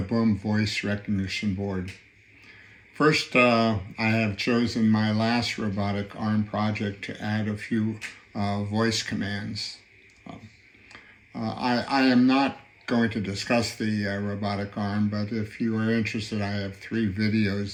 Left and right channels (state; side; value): identical; both; correlation 1.00